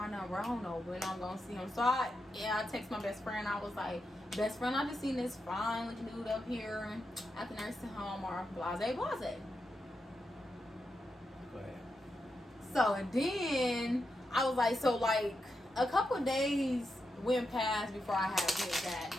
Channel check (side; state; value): both; normal; correlation 0.86